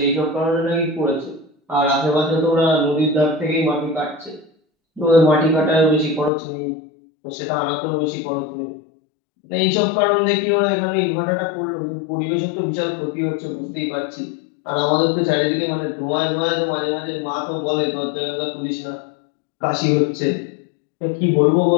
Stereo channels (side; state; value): right; drops out; at 6.3 s